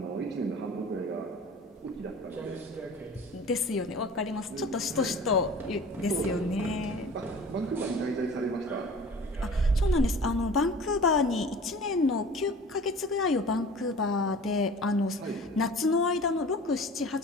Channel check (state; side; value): normal; both; correlation 0.42